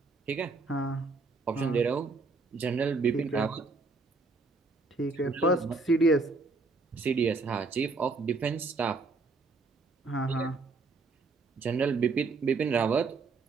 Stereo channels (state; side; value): quieter; left; 3.9 dB